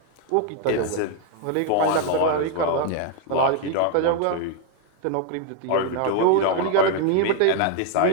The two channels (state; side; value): different; both; correlation 0.00